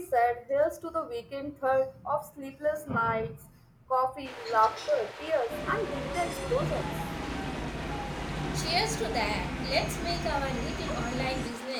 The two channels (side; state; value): both; identical; correlation 1.00